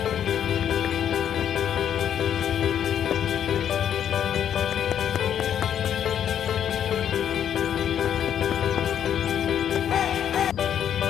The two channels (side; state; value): right; quieter; 9.4 dB